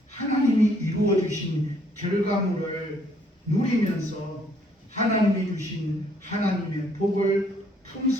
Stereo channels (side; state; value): both; normal; correlation 0.66